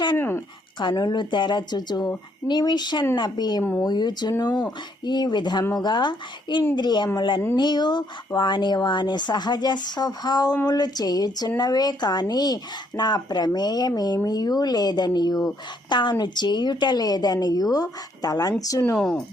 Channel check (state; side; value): normal; both; correlation 0.70